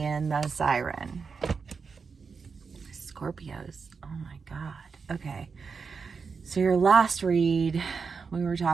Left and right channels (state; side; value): quieter; left; 5.3 dB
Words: the siren. Scorpios, oh my god. Okay, so your last read, we were